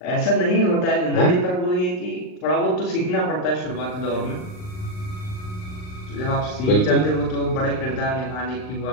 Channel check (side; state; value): right; late; 39 ms